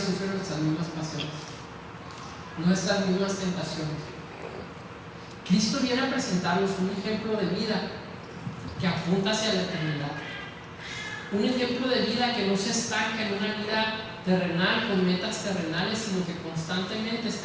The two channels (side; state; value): both; identical; correlation 1.00